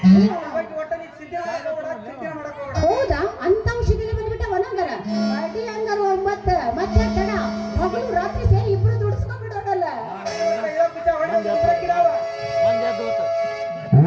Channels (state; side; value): identical; both; correlation 1.00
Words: ಒಟ್ಟ ನೀ ಸಿದ್ಧ ಮಾಡಕ್ ಹೋಗ್ಬೇಡ ಹೌದಾ ಅಂತ ಔಷಧಿನ ಬಂದ್ಬಿಟ್ಟ ಒಣಂಗರ ಅಡಿ ಹಂಗಾರ ಮತ್ತೆ ಮತ್ತೆ ತಡ ಹಗಲು ರಾತ್ರಿ ಸೇರಿ ಇಬ್ರು ದುಡಿಸ್ಕೊಂಡ್ಬಿಡೋದಲ್ಲ